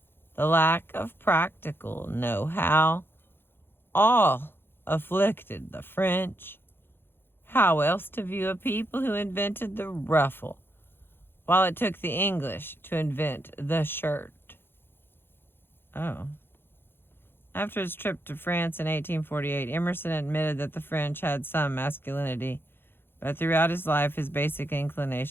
the lack of practical know-how, all afflicted the French. How else to view a people who invented the ruffle, while it took the English to invent the shirt? Oh. After his trip to France in 1848, Emerson admitted that the French had some masculinity, but throughout his life his basic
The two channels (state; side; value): late; right; 0.10 ms